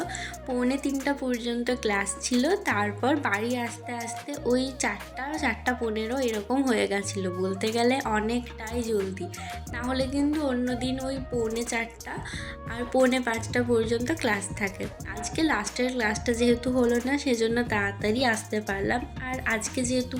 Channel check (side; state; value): both; identical; correlation 1.00